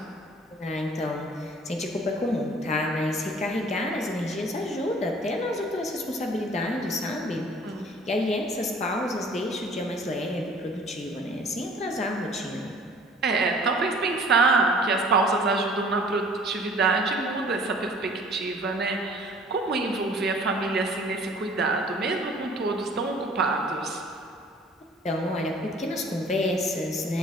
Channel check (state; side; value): normal; both; correlation 0.51